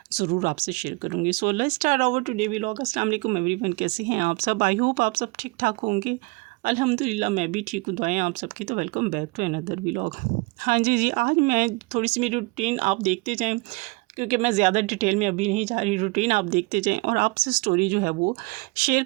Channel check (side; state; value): left; quieter; 26.0 dB